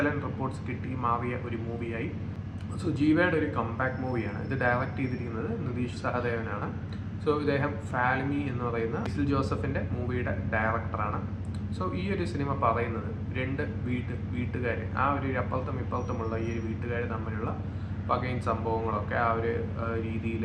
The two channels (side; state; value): both; identical; correlation 1.00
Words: റിപ്പോർട്ട്സ് കിട്ടി മാറിയ ഒരു മൂവിയായി. സോ ജീവയുടെ ഒരു കംബാക്ക് മൂവിയാണ്. ഇത് ഡയറക്റ്റ് ചെയ്തിരിക്കുന്നത് നിതീഷ് സഹദേവനാണ്. സോ ഇദ്ദേഹം ഫാൽമി എന്ന് പറയുന്ന ഇസിൽ ജോസഫിൻ്റെ മൂവിയുടെ ഡയറക്ടറാണ്. സോ ഈ ഒരു സിനിമ പറയുന്നത് രണ്ട് വീട്ടുകാർ, ആ ഒരു അപ്പുറത്തും ഇപ്പുറത്തുമുള്ള ഈ ഒരു വീട്ടുകാർ തമ്മിലുള്ള പകയും സംഭവങ്ങളൊക്കെ ആ ഒരു രീതിയിൽ